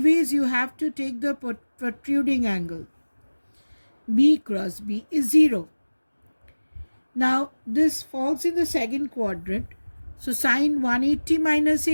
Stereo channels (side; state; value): both; inverted; correlation -1.00